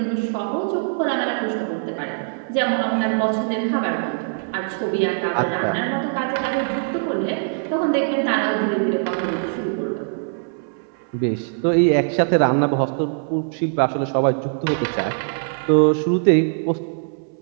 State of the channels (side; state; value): left; silent; 64 dB below the other